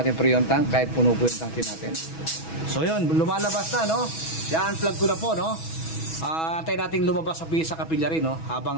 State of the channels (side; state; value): right; late; 6.2 ms